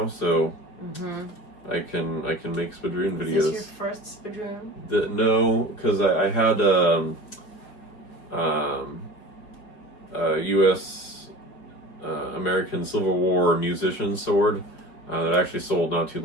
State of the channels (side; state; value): right; late; 4.9 ms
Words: so I can make Spadroon videos. Is this your first Spadroon? No, because I had U.S. American Civil War musician sword that I actually sold not too